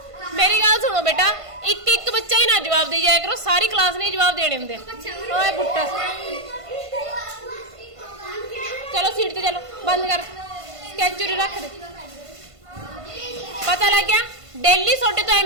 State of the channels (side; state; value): left; late; 1.5 ms